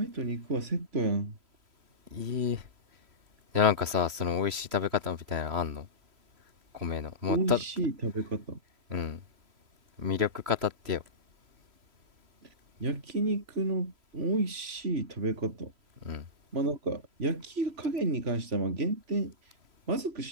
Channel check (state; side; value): late; left; 3.1 ms